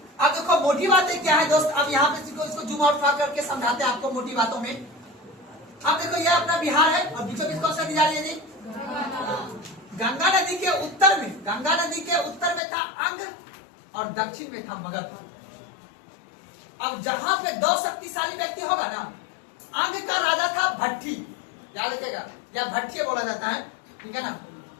अब देखो मोटी बातें क्या है दोस्त। अब यहाँ पे इसको जूम आउट करके समझाते हैं आपको मोटी बातों में। अब देखो ये अपना बिहार है और बीचों बीच कौन सा नदी जा रही है जी? गंगा नदी के उत्तर में, गंगा नदी के उत्तर में था अंग और दक्षिण में था मगध। अब जहां पे दो शक्तिशाली व्यक्ति होगा ना, अंग का राजा था भट्टी, याद रखिएगा, या भट्टी बोला जाता है, ठीक है ना।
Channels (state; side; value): drops out; right; at 12.6 s